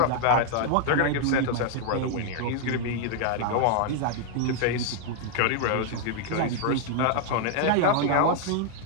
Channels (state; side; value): different; both; correlation 0.00